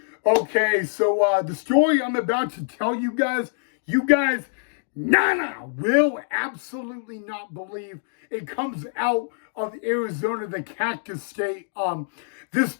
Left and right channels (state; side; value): silent; right; digital silence